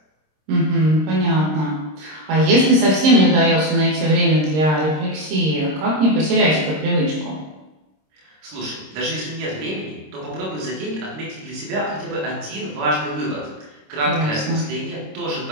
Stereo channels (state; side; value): late; left; 26 ms